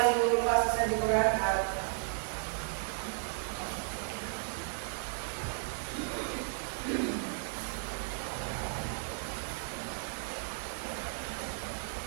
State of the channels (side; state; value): left; silent; 55 dB below the other